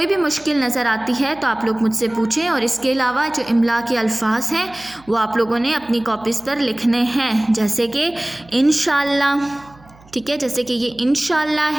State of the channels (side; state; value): right; noise; hum, 26 dB below the sound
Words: بھی مشکل نظر آتی ہے تو آپ لوگ مجھ سے پوچھیں، اور اس کے علاوہ جو املا کے الفاظ ہیں وہ آپ لوگوں نے اپنی کاپیز پر لکھنے ہیں، جیسے کہ انشاءاللہ، ٹھیک ہے؟ جیسے کہ یہ انشاءاللہ